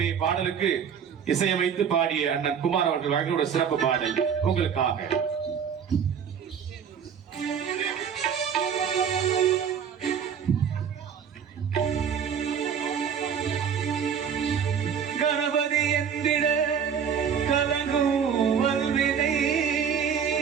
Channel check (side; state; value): left; quieter; 7.5 dB